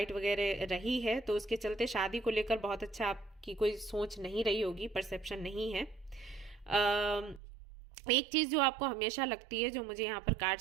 वगैरह रही है, तो उसके चलते शादी को लेकर बहुत अच्छा आपकी कोई सोच नहीं रही होगी, परसेप्शन नहीं है। एक चीज जो आपको हमेशा लगती है, जो मुझे यहाँ पर कार्ड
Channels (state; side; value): drops out; left; at 7.4 s